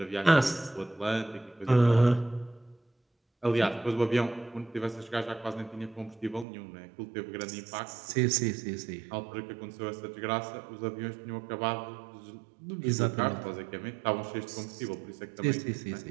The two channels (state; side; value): drops out; left; at 6.5 s